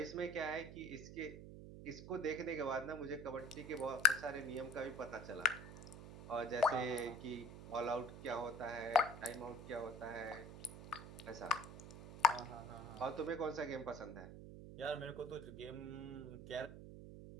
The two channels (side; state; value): right; noise; hum, 12 dB below the sound